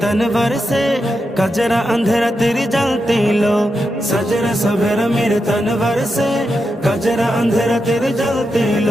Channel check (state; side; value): normal; both; correlation 0.87